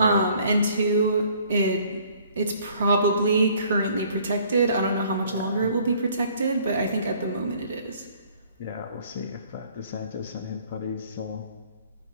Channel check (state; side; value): inverted; both; correlation -0.58